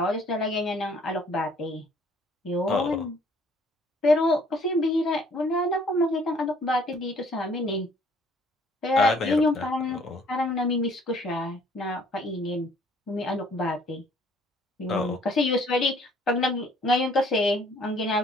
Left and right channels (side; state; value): both; normal; correlation 0.60